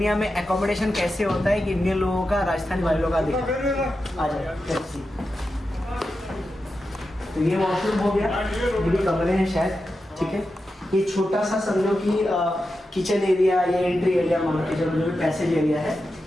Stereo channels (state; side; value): normal; both; correlation 0.90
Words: में एकोमोडेशन कैसे होता है कि इंडियन लोगों का राजस्थानी वालों का दिखा आ जाए। तो ये वॉशरूम हो गया, ये भी कमरे हैं शायद, ठीक है। ये छोटा सा समझो कि किचन एरिया या एंट्री एरिया मान के चलो, जो भी पैसेज एरिया है।